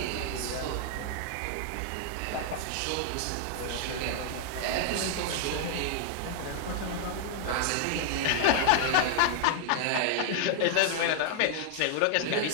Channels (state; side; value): different; both; correlation 0.00